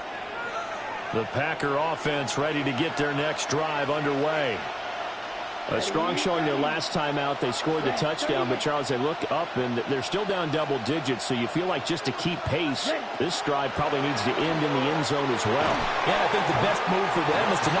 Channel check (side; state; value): both; identical; correlation 1.00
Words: line. The Packer offense ready to get their next drive underway. A strong showing their last time out. They scored the touchdown, but, Charles, they look up, and they're still down double digits, so you feel like just to keep pace, this drive probably needs to end in the end zone as well. Yeah, I think the best move for them is to